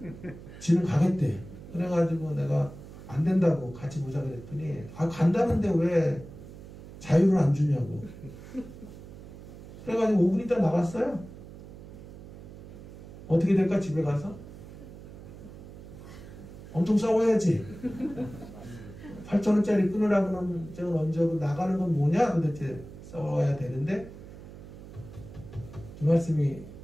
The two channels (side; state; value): right; noise; hum, 15 dB below the sound